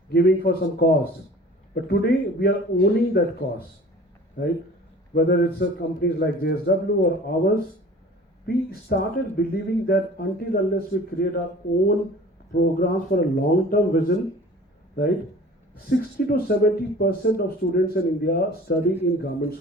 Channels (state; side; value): normal; both; correlation 0.45